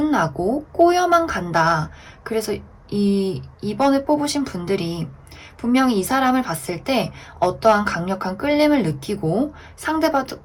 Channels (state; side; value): identical; both; correlation 1.00